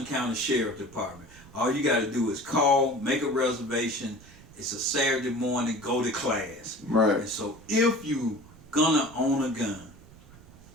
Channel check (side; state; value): right; noise; rumble, 22 dB below the sound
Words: County Sheriff Department. All you got to do is call, make a reservation. It's a Saturday morning, go to class. Right. And so if you gonna own a gun,